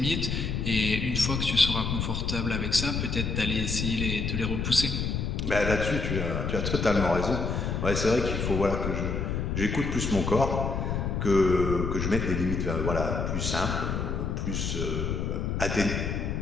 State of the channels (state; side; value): noise; left; rumble, 1 dB below the sound